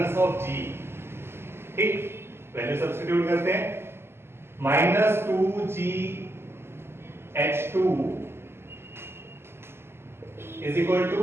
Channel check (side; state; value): left; late; 0.12 ms